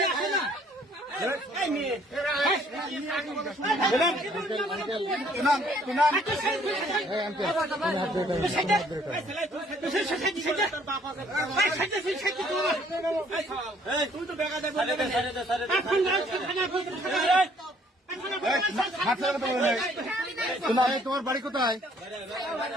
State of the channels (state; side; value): normal; both; correlation 0.62